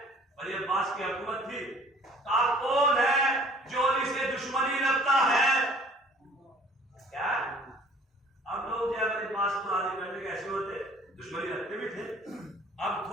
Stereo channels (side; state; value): both; normal; correlation 0.53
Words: ولی عباس کی حکومت تھی، کہا کون ہے جو علی سے دشمنی رکھتا ہے. کیا اب لوگ جو ہے ولی عباس کو راضی کرنے کے ایسے ہوتے، دشمنی رکھتے بھی تھے. اب